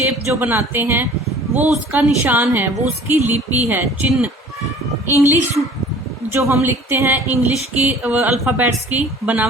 जो बनाते हैं वो उसका निशान है, वो उसकी लिपि है, चिन्ह। इंग्लिश जो हम लिखते हैं, इंग्लिश की अल्फ़ाबेट्स की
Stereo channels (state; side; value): normal; both; correlation 0.48